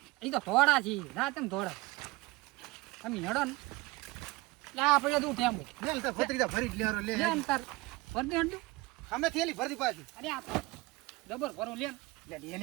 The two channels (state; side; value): quieter; left; 21.9 dB